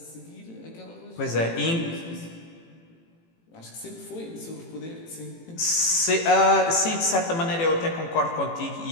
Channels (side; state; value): right; late; 18 ms